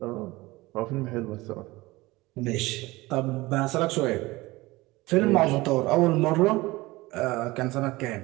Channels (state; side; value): quieter; left; 20.6 dB